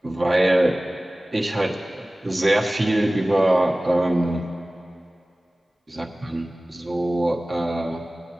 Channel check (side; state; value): both; normal; correlation 0.98